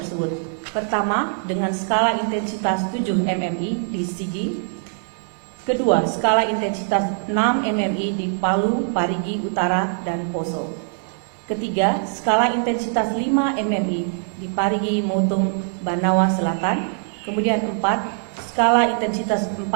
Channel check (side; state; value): left; silent; 61 dB below the other